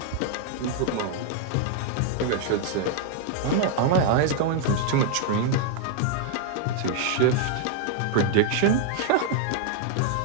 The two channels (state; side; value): different; both; correlation 0.00